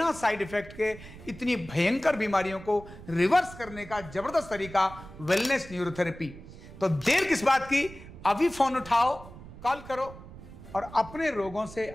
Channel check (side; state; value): right; noise; rumble, 16 dB below the sound